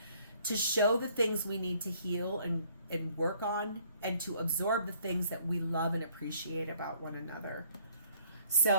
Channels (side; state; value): both; inverted; correlation -0.60